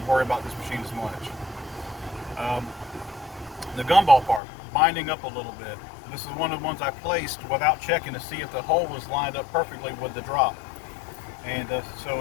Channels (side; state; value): right; drops out; at 4.4 s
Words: about this machine as much. The gumball part, binding up a little bit. This is one of the ones I placed without checking to see if the hole was lined up perfectly with the drop. And